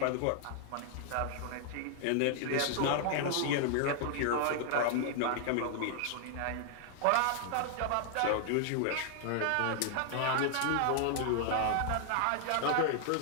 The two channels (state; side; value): different; both; correlation 0.00